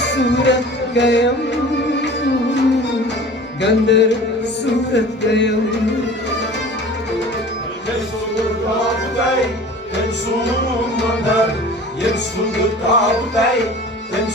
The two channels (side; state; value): both; normal; correlation 0.41